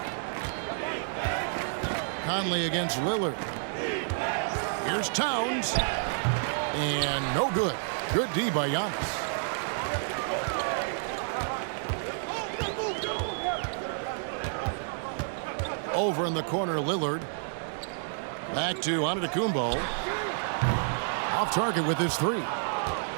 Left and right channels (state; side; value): silent; left; digital silence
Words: Conley against Lillard. Here's Towns. And no good. Good D by Giannis. Over in the corner, Lillard. Back to Antetokounmpo. Off target with his three.